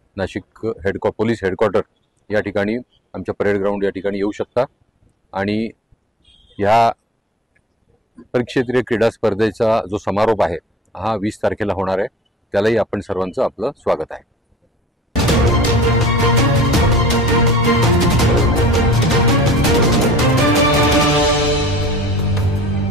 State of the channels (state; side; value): normal; both; correlation 0.46